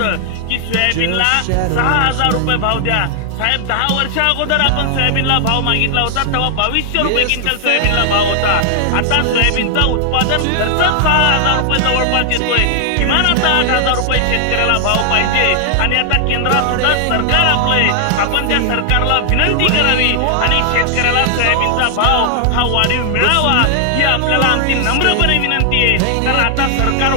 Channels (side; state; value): both; different; correlation 0.00